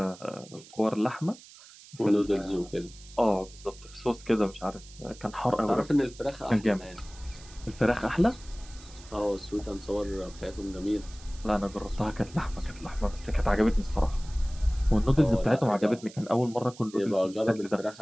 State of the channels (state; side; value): noise; right; hiss, 20 dB below the sound